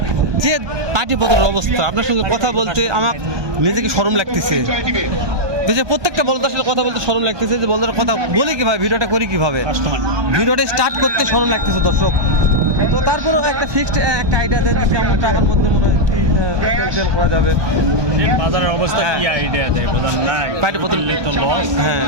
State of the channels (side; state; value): left; late; 1.2 ms